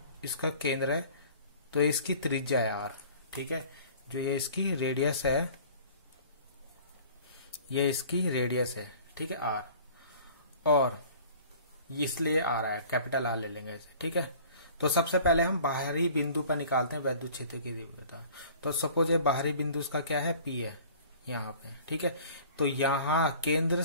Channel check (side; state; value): both; inverted; correlation -0.47